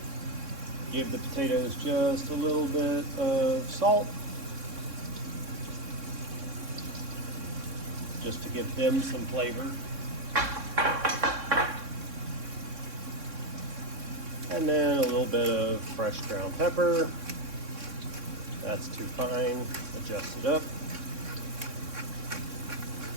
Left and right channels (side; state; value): left; late; 3.6 ms